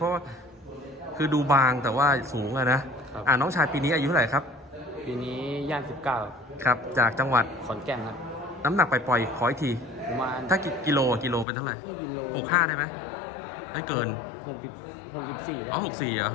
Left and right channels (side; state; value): right; drops out; at 11.5 s